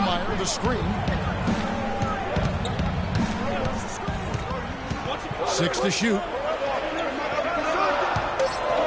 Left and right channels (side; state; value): both; identical; correlation 1.00